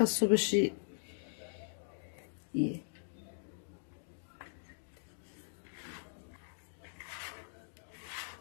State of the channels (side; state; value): right; silent; digital silence